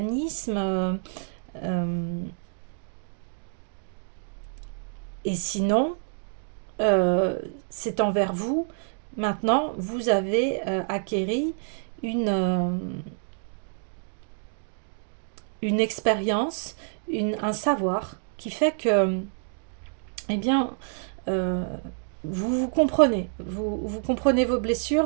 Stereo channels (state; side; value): silent; left; digital silence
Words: Et sinon, c'est envers vous. Maintenant, vous avez acquéri une expérience, un savoir qui fait que, eh bien, vous vous comprenez. Vous comprenez vos